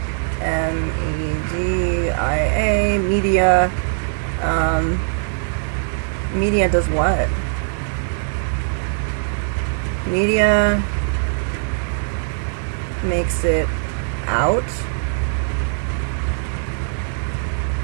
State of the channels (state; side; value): silent; left; digital silence